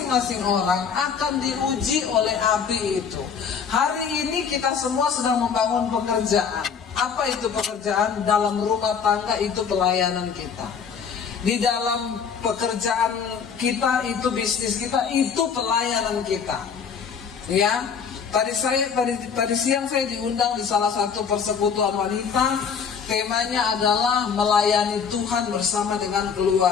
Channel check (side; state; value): right; quieter; 6.6 dB